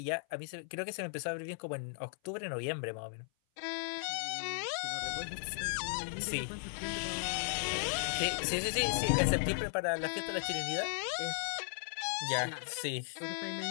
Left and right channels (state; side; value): silent; right; 53 dB below the other